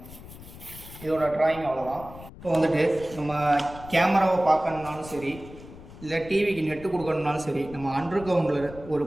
இதோட ட்ராயிங் அவ்வளோதான். இப்போ வந்துட்டு நம்ம கேமராவை பார்க்கணுன்னாலும் சரி, இல்லை டிவிக்கு நெட்டு கொடுக்கணுன்னாலும் சரி, நம்ம அண்டர் கிரவுண்டில் ஒரு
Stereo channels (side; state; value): left; noise; rumble, 16 dB below the sound